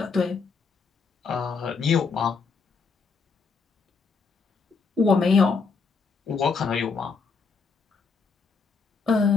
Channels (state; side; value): quieter; right; 4.9 dB